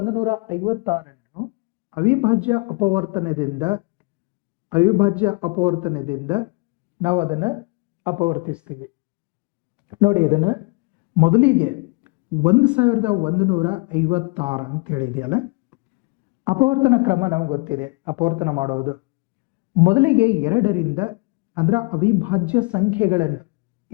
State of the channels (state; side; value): quieter; right; 29.3 dB